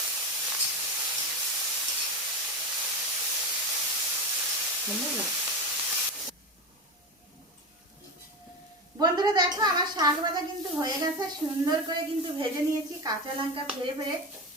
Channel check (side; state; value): both; normal; correlation 0.19